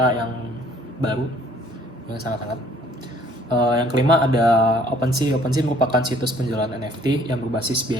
yang baru yang sangat-sangat. Yang kelima ada OpenSea. OpenSea merupakan situs penjualan NFT yang berbasis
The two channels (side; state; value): both; normal; correlation 0.58